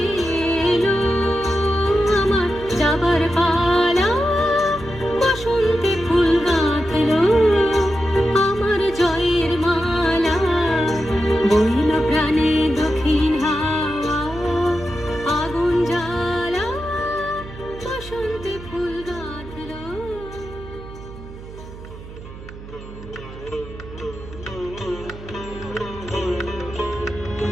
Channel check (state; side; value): noise; right; hum, 14 dB below the sound